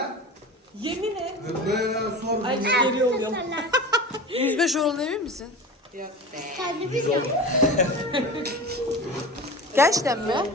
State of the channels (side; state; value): both; normal; correlation 0.32